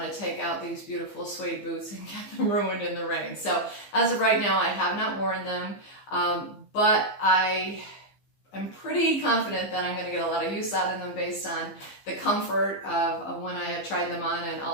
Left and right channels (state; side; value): late; right; 15 ms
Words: to take out these beautiful suede boots and get them ruined in the rain. So as of right now, I have not worn them, but I'm pretty confident that I'm going to get a lot of use out of them based on the comfort of when I have tried them on, and